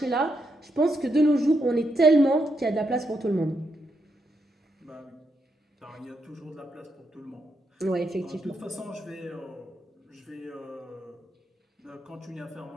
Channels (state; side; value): normal; both; correlation 0.81